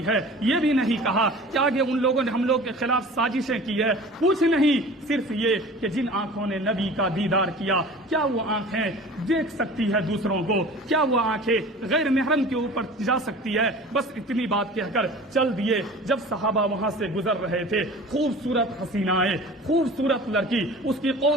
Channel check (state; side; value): normal; both; correlation 0.41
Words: ہے، یہ بھی نہیں کہا کہ آگے ان لوگوں نے ہم لوگ کے خلاف سازشیں کی ہے، کچھ نہیں، صرف یہ کہ جن آنکھوں نے نبی کا دیدار کیا، کیا وہ آنکھیں دیکھ سکتی ہے دوسروں کو؟ کیا وہ آنکھیں غیر محرم کے اوپر جا سکتی ہے؟ بس اتنی بات کہہ کر چل دیے۔ جب صحابہ وہاں سے گزر رہے تھے، خوبصورت حسینائیں، خوبصورت لڑکی، اس کی